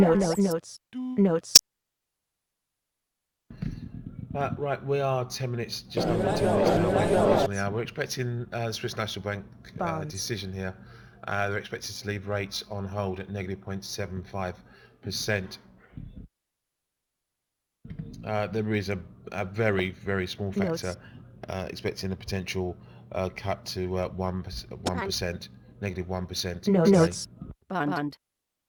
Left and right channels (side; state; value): both; identical; correlation 1.00